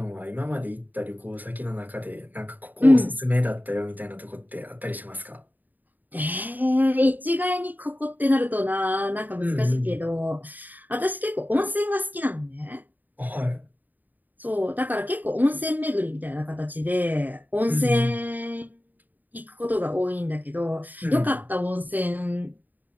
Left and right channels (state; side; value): late; left; 0.085 ms